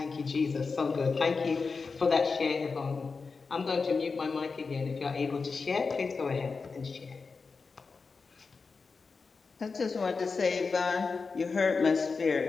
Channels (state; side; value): quieter; right; 4.6 dB